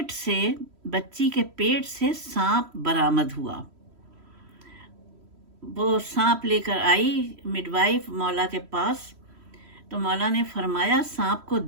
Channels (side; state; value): left; late; 3.1 ms